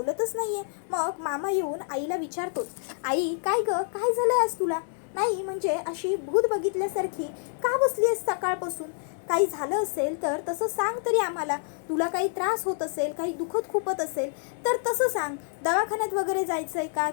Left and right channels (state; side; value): silent; right; 58 dB below the other